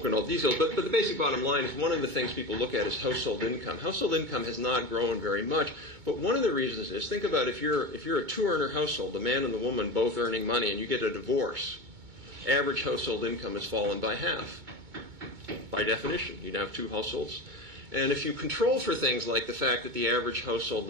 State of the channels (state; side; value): late; left; 2.2 ms